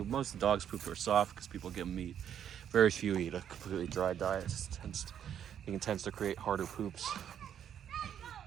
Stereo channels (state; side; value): quieter; left; 9.3 dB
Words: Most of the dogs' poop are soft because people give them meat. Very few eat a completely dry diet. It tends to create harder poops.